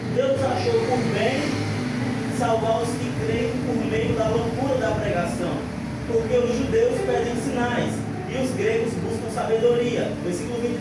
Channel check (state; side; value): identical; both; correlation 1.00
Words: achou por bem salvar os que creem por meio da loucura da pregação, porque os judeus pedem sinais e os gregos buscam sabedoria. Versículo